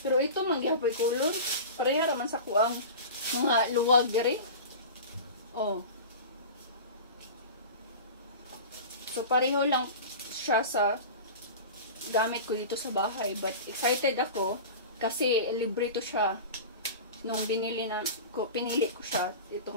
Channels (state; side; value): inverted; both; correlation -0.32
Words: Pero ito mangyapoy kulon. Pareha raman sa kuang mga luwag diri. Oh. So pareho lang siya sa gamit ko dito sa bahay. But excited ako kasi libre to siya. Nung pinili ko siya. Ito